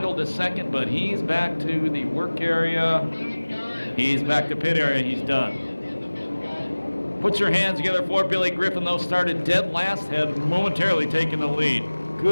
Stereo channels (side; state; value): both; inverted; correlation -1.00